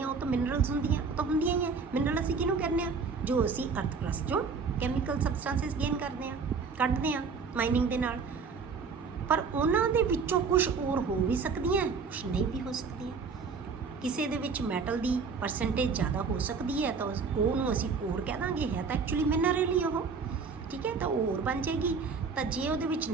ਉਹ ਤਾਂ ਮਿਨਰਲਸ ਹੁੰਦੀਆਂ, ਉਹ ਤਾਂ ਹੁੰਦੀਆਂ ਹੀ ਹੈ। ਮਿਨਰਲ ਅਸੀਂ ਕਿਹਨੂੰ ਕਹਿੰਦੇ ਹਾਂ? ਜੋ ਅਸੀਂ ਅਰਥ ਕਰਸਟ ਚੋਂ ਕੈਮੀਕਲ ਸਬਸਟੈਂਸਿਸ ਗੇਨ ਕਰਦੇ ਹਾਂ, ਕੱਢਦੇ ਹਾਂ ਮਾਈਨਿੰਗ ਦੇ ਨਾਲ। ਪਰ ਉਹਨਾਂ ਦੇ ਵਿੱਚੋਂ ਕੁਝ ਓਰ ਹੋ ਵੀ ਸਕਦੀਆਂ, ਕੁਝ ਨਹੀਂ ਵੀ ਹੋ ਸਕਦੀਆਂ। ਕਿਸੇ ਦੇ ਵਿੱਚ ਮੈਟਲ ਦੀ ਪਰਸੈਂਟੇਜ ਜ਼ਿਆਦਾ ਹੋ ਸਕਦੀ ਹੈ ਤਾਂ ਉਹਨੂੰ ਅਸੀਂ ਓਰ ਕਹਿ ਦਾਂਗੇ, ਹੈ ਤਾਂ ਐਕਚੁਅਲੀ ਮਿਨਰਲ ਹੀ ਉਹ। ਠੀਕ ਹੈ, ਤਾਂ ਉਹ ਓਰ ਬਣ ਜਾਏਗੀ। ਤਾਂ ਜੇ ਉਹਦੇ ਵਿੱਚ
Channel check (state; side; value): quieter; left; 5.1 dB